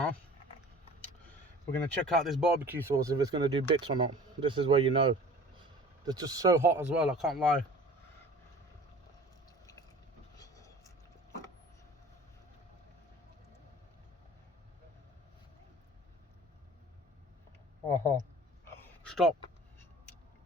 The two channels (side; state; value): both; normal; correlation 0.44